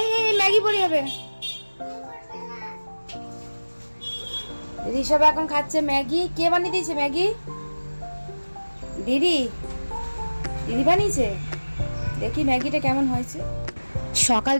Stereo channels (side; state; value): both; inverted; correlation -1.00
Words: এই Maggi পড়ে যাবে। ঋষভ এখন খাচ্ছে ম্যাগি। কে বানিয়ে দিয়েছে ম্যাগি? দিদি দিদি বানিয়েছে। দেখি ম্যাগিটা কেমন হয়েছে। সকাল